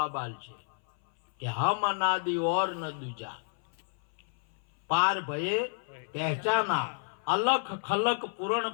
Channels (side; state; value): right; silent; 56 dB below the other